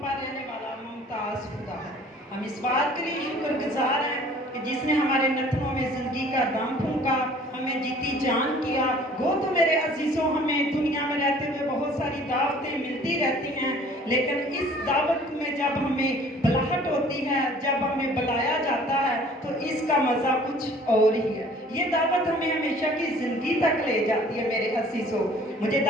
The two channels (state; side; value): normal; both; correlation 0.52